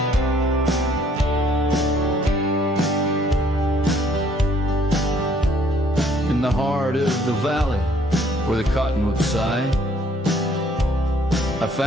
In the heart of the valley where the cottonwoods sigh, I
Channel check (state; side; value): normal; both; correlation 0.62